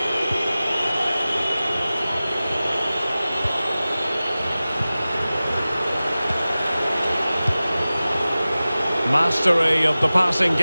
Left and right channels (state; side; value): inverted; both; correlation -0.97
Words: Mastery of the passing